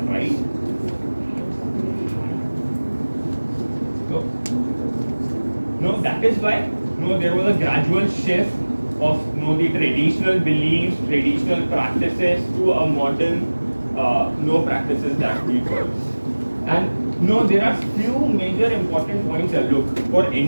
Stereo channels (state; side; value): inverted; both; correlation -1.00